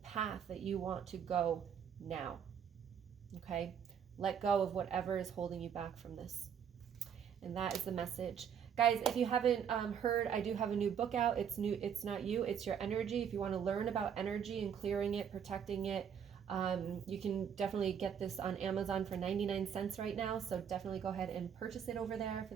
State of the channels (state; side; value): quieter; left; 8.0 dB